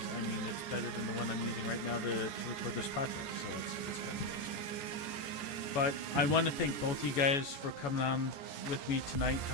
I mean, it's better than the one I'm using right now to record this podcast. So it's kind of interesting. But I want to thank both you guys for coming on with me tonight,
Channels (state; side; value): late; right; 14 ms